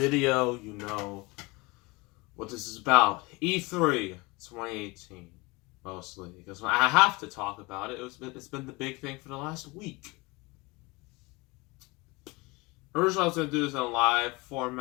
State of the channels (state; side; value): quieter; right; 24.6 dB